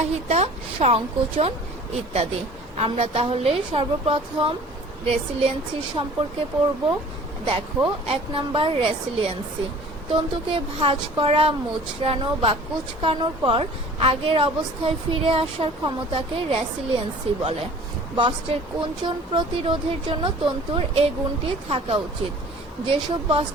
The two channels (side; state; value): both; normal; correlation 0.47